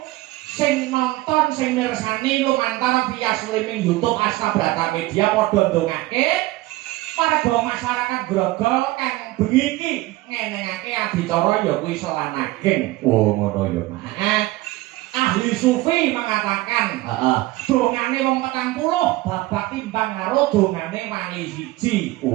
sing nonton sing mirsani lumantar via streaming YouTube Asta Brata Media padha ndongake warga masyarakat Grogol kang bengi iki ngenengake adicara ya kuwi selanageng. Oh ngono ya Mak. Ahli sufi mengatakan dongane wong 40 babak timbang karo dongane wali siji.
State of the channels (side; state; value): left; quieter; 18.8 dB